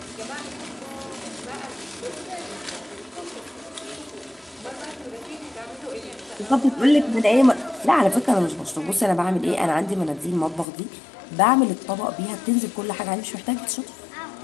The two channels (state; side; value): drops out; right; at 10.7 s